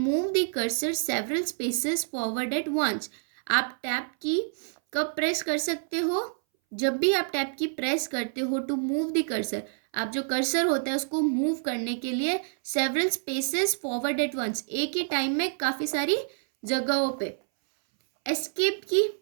the cursor several spaces forward at once. आप टैब की कब प्रेस कर सकते हो, जब भी आप टैब की प्रेस करते हो टू मूव द कर्सर, आप जो कर्सर होता है उसको मूव करने के लिए several spaces forward at once, एक ही टाइम में काफ़ी सारी जगहों पे. एस्केप की,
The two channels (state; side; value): silent; left; 60 dB below the other